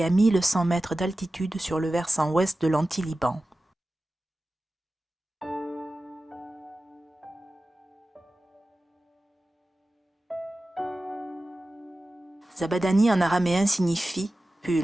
à 1100 mètres d'altitude sur le versant ouest de l'anti-Liban. Zabadani en araméen signifie «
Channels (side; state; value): both; normal; correlation 0.95